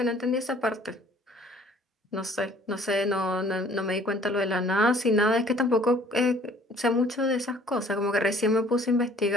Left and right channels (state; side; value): normal; both; correlation 0.55